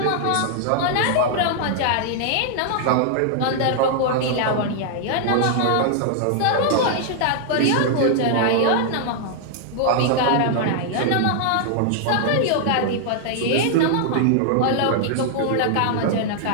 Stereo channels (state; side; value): different; both; correlation -0.01